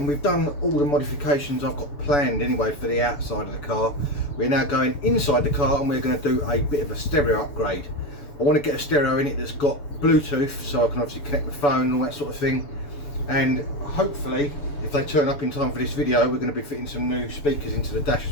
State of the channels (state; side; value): late; right; 6.9 ms